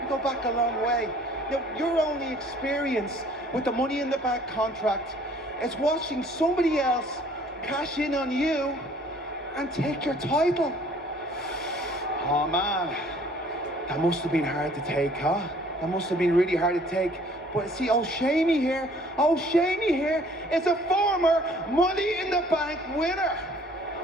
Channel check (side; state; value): both; normal; correlation 0.56